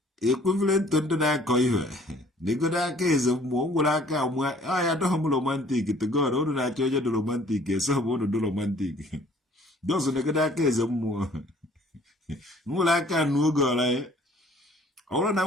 Equivalent to ndị na-akọ ihe. Negoda eze mmụọ nwere aka amụa ya adọghị m romantik to God unu na-achọ onye dị romantik eso bụ unu dị romantik dọzụ negoda aka eze mmụọ nwere aka anụ oge ọla ya ọ bụrụ na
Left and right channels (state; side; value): normal; both; correlation 0.56